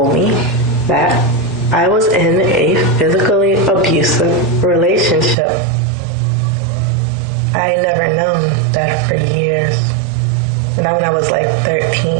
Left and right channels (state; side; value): drops out; left; at 5.4 s